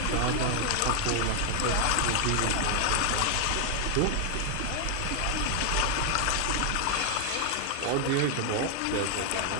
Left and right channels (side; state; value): both; different; correlation 0.00